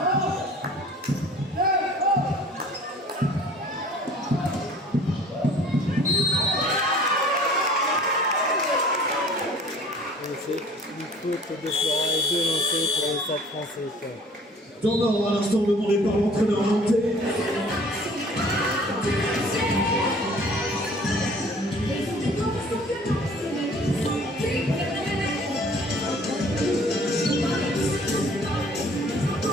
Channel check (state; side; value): normal; both; correlation 0.51